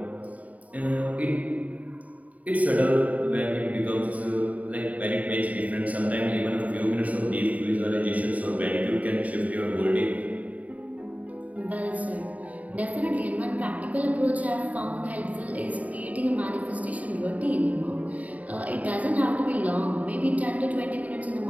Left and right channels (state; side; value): late; left; 0.071 ms